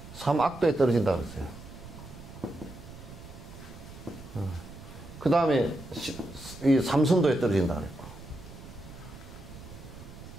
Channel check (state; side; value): noise; right; rumble, 15 dB below the sound